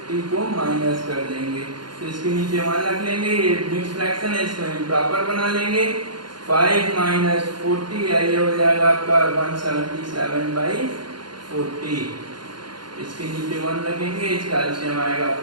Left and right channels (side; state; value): left; late; 0.71 ms